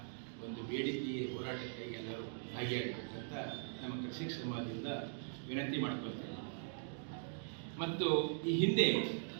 ಒಂದು ಬೇಡಿಕೆ ಹೋರಾಟಕ್ಕೆ ಎಲ್ಲರೂ ಭಾಗಿಯಾಗಬೇಕಂತ ನಮ್ಮ ಕೃಷಿಕ ಸಮಾಜದಿಂದ ವಿನಂತಿ ಮಾಡ್ಕೊಳ್ತೇವೆ. ಮತ್ತು ಈ ಹಿಂದೆ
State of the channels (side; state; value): left; silent; digital silence